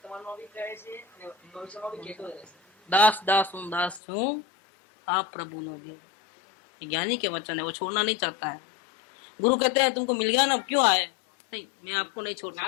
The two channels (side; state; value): right; drops out; at 4.0 s